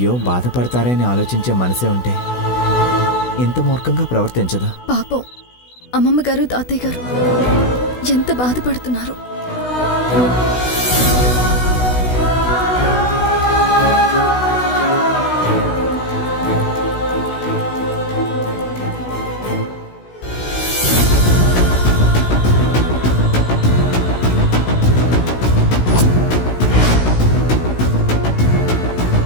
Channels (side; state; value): right; late; 16 ms